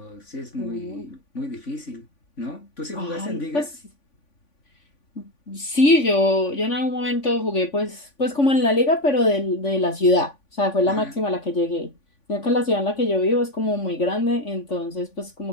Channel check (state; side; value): late; right; 3.5 ms